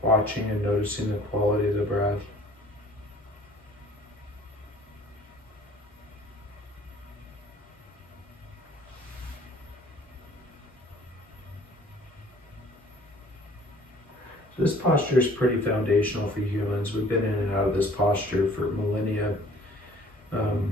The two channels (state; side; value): normal; both; correlation 0.53